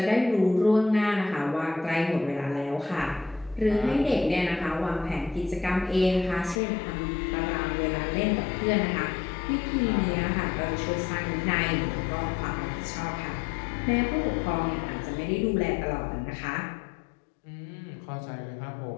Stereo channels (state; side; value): drops out; right; at 6.6 s